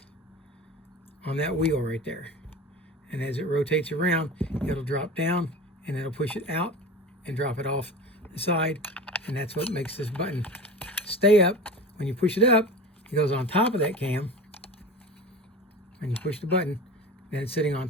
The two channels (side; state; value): both; normal; correlation 0.33